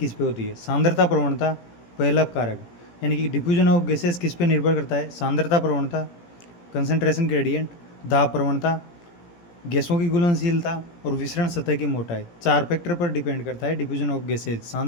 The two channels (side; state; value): right; late; 17 ms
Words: पे होती है? सांद्रता प्रवणता पहला कारक, यानी कि डिफ्यूजन ऑफ गैसेज किस पे निर्भर करता है? सांद्रता प्रवणता, कंसंट्रेशन ग्रेडियंट, दाब प्रवणता, गैसों की घुलनशीलता और विसरण सतह की मोटाई। 4 फैक्टर पर डिपेंड करता है डिफ्यूजन ऑफ गैसेज।